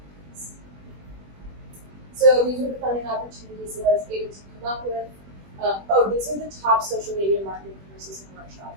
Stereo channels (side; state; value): left; late; 21 ms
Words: So these are the funding opportunities that I was able to come up with. These are the top social media marketing courses and